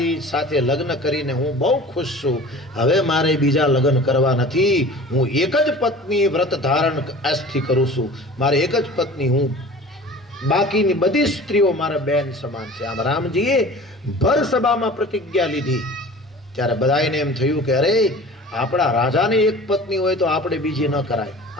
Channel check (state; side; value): normal; both; correlation 0.41